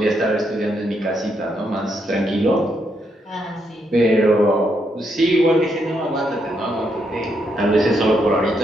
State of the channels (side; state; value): both; normal; correlation 0.78